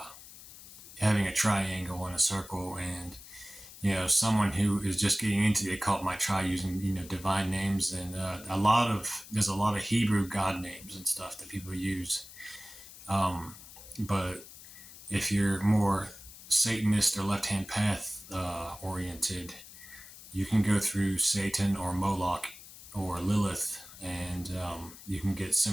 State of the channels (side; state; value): left; noise; hiss, 17 dB below the sound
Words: having a triangle and a circle, and someone who is just getting into the occult might try using divine names, and there's a lot of Hebrew god names and stuff that people use. But if you're more Satanist or left-hand path oriented, you can go through Satan or Moloch or Lilith, and you can get